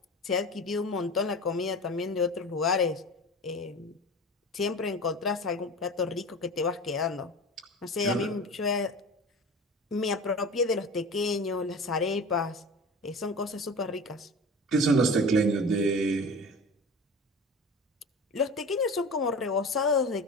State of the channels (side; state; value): both; normal; correlation 0.33